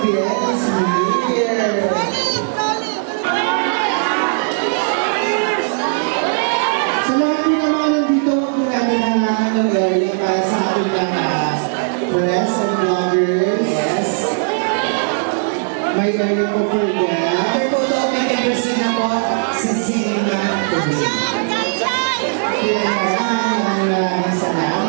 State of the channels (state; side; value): silent; left; 58 dB below the other